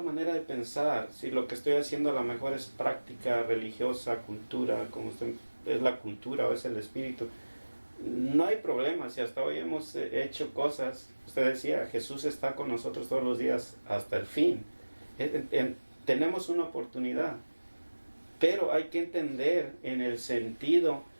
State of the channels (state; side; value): inverted; both; correlation -1.00